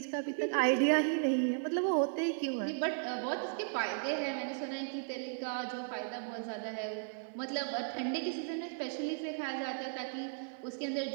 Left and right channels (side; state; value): left; silent; digital silence